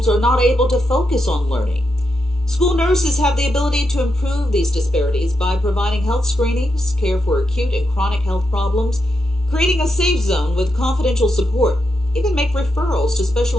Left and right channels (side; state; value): both; normal; correlation 0.84